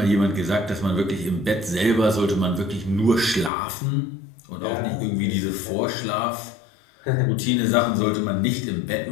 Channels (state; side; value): drops out; right; at 3.5 s